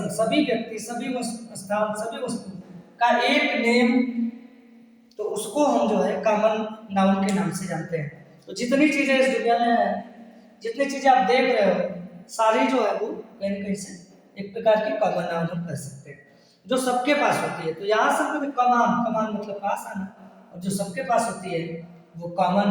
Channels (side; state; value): both; identical; correlation 1.00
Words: सभी व्यक्ति, सभी स्थान, सभी वस्तु का एक नेम, तो उसको हम जो है कॉमन नाउन के नाम से जानते हैं। तो जितनी चीजें इस दुनिया में है, जितनी चीजें आप देख रहे हो, सारी जो है वो कहीं न कहीं से एक प्रकार की कॉमन नाउन हम कह सकते हैं। जो सबके पास होती है। तो यहाँ से हमको कमान, कमान मतलब पास आना, और जो सबके पास होती है वो कॉमन